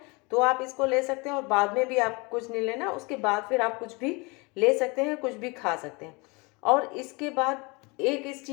तो आप इसको ले सकते हैं, और बाद में भी आप कुछ नहीं लेना, उसके बाद फिर आप कुछ भी ले सकते हैं, कुछ भी खा सकते हैं। और इसके बाद एक इस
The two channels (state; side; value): quieter; right; 27.8 dB